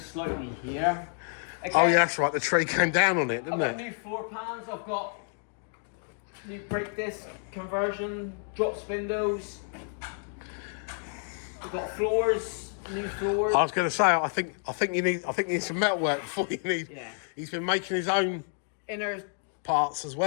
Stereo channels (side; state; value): right; silent; 58 dB below the other